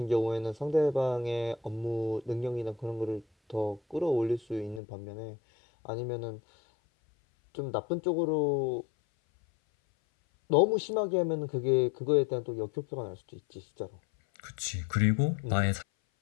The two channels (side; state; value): right; drops out; at 4.8 s